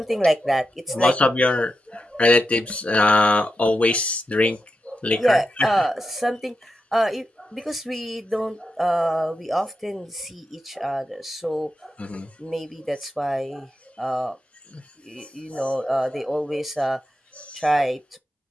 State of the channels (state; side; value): normal; both; correlation 0.87